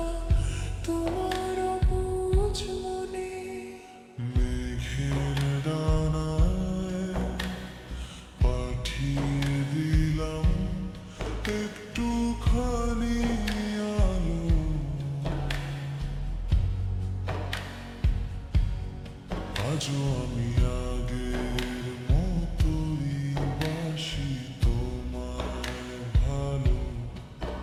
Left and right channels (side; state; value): both; identical; correlation 1.00